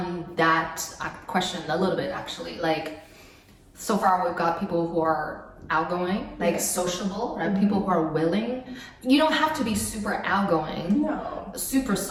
that question a little bit actually. Like, so far we've got people who are outgoing, like sociable, right? People who are willing. You don't have to be super outgoing, super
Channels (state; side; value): identical; both; correlation 1.00